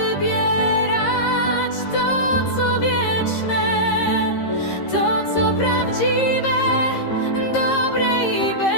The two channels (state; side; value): late; right; 13 ms